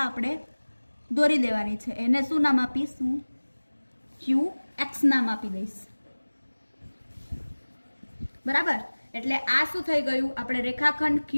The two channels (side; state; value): both; inverted; correlation -1.00